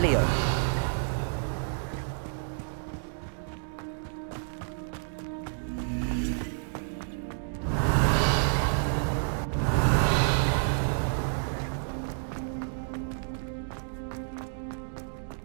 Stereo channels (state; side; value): silent; left; digital silence